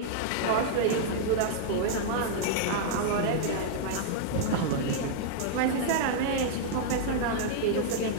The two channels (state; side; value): different; both; correlation -0.01